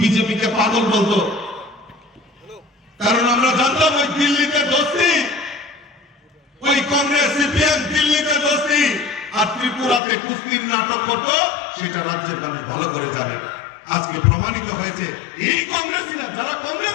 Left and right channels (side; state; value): right; drops out; at 10.0 s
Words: কে পাগল বলতো, কারণ আমরা জানতাম ওই দিল্লিতে দোস্তি, ওই কংগ্রেস সিপিএম দিল্লিতে দোস্তি আর ত্রিপুরাতে কুস্তির নাটক করতো, সেটা রাজ্যের মানুষ ভালো করে জানে। আজকে প্রমাণিত হয়েছে এই কংগ্রেসীরা যারা